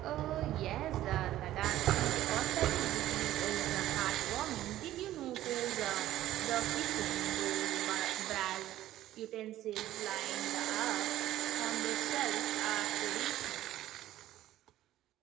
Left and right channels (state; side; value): quieter; left; 13.9 dB